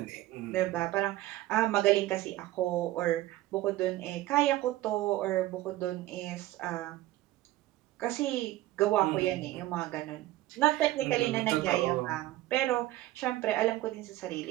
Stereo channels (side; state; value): left; quieter; 16.1 dB